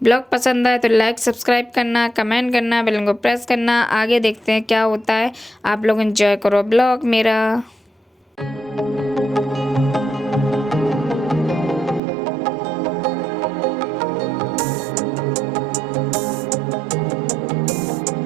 ब्लॉग पसंद आए तो लाइक सब्सक्राइब करना, कमेंट करना, बेल को प्रेस करना। आगे देखते हैं क्या होता है। आप लोग एंजॉय करो ब्लॉग मेरा।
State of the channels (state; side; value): drops out; left; at 12.0 s